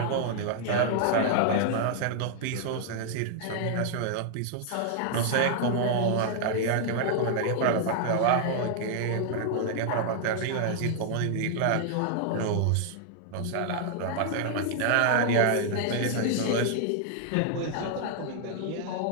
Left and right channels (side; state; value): both; different; correlation 0.00